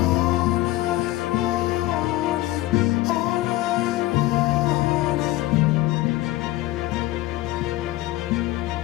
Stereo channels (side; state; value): right; quieter; 17.5 dB